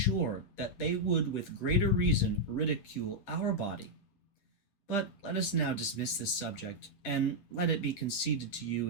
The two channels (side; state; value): right; late; 10 ms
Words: that they would with greater reason ridicule our body. But let us now dismiss this subject, and let it be conceded to